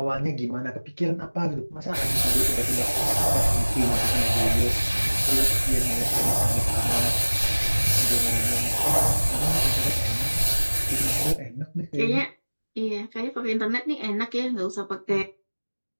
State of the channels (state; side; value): inverted; both; correlation -1.00